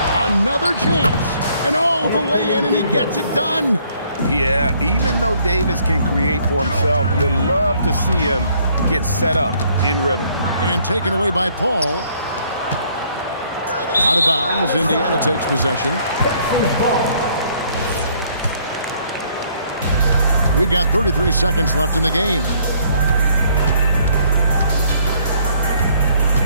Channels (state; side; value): inverted; both; correlation -0.65